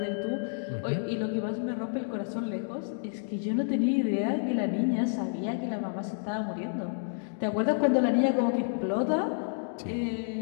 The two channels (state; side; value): silent; right; digital silence